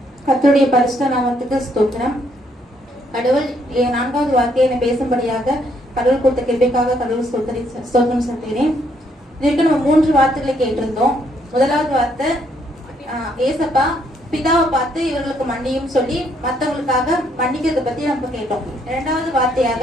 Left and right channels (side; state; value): both; normal; correlation 0.71